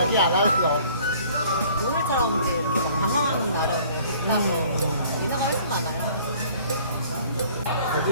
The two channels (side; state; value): both; inverted; correlation -0.54